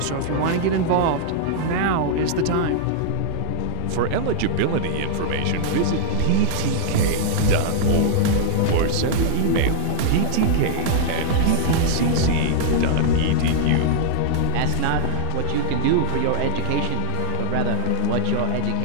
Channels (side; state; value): both; different; correlation -0.01